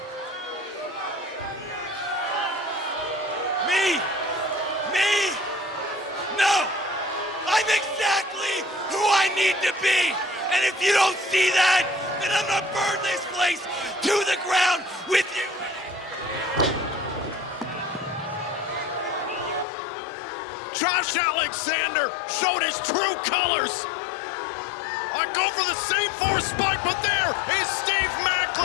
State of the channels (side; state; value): right; drops out; at 19.7 s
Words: Me? No! I'm exactly who I need to be! And if you don't see that, then I'm gonna burn this place to the ground with you! Josh Alexander showed his true colors. I go for the same force spike, but there is Steve